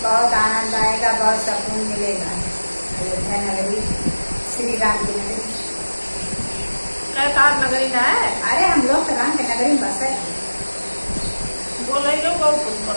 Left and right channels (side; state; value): both; inverted; correlation -1.00